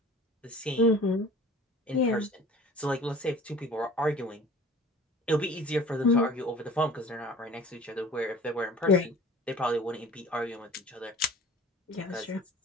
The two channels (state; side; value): normal; both; correlation 0.45